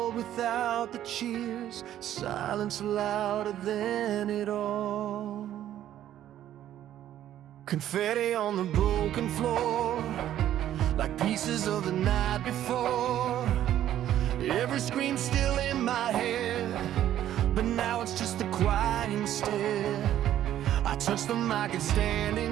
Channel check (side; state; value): left; quieter; 11.9 dB